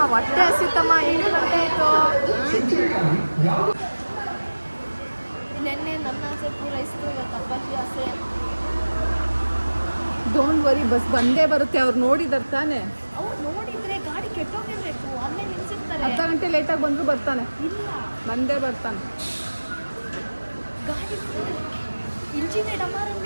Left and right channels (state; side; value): inverted; both; correlation -1.00